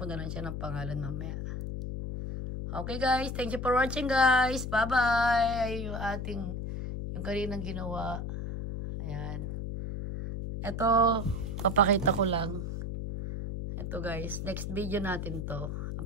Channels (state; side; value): noise; left; hum, 4 dB below the sound